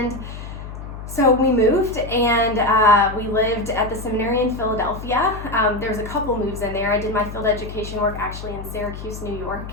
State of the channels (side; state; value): left; noise; hum, 10 dB below the sound